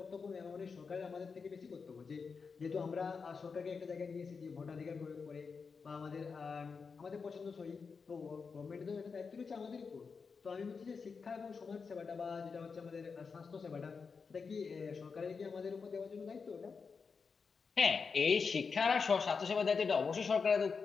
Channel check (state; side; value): quieter; right; 5.3 dB